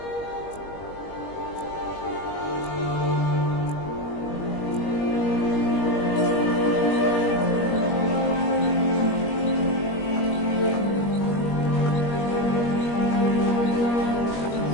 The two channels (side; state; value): right; late; 21 ms